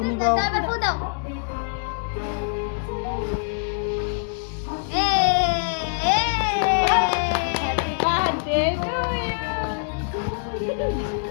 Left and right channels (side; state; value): right; silent; digital silence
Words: নিবাও এবার ফু দাও হ্যাপি বার্থডে টু